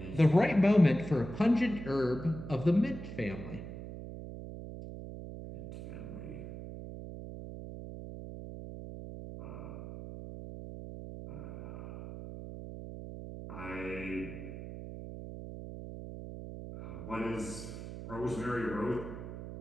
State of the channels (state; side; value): noise; right; hum, 10 dB below the sound